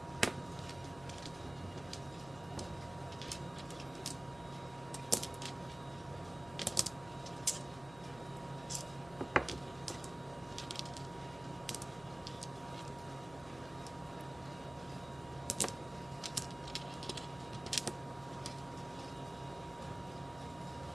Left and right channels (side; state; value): left; noise; hum, 17 dB below the sound